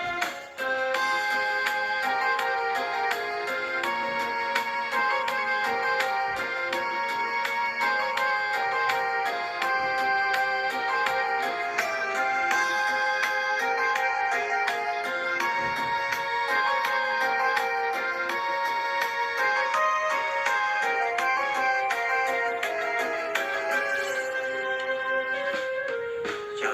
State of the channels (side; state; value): both; identical; correlation 1.00